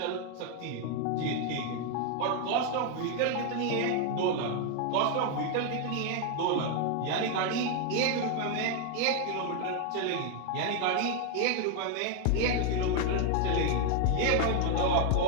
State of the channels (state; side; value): different; both; correlation 0.00